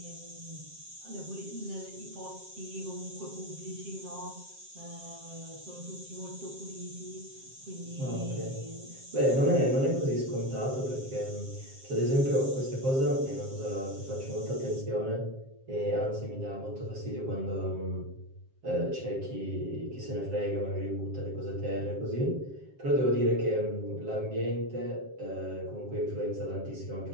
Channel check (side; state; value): left; late; 7.5 ms